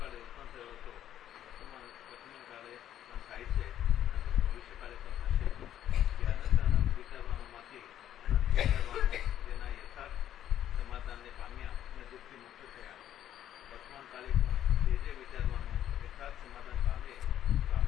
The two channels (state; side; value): quieter; right; 11.1 dB